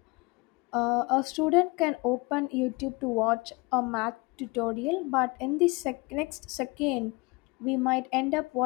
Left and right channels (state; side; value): quieter; right; 26.4 dB